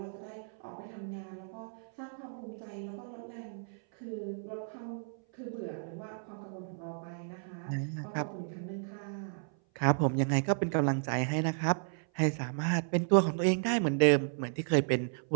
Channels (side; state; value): left; silent; 55 dB below the other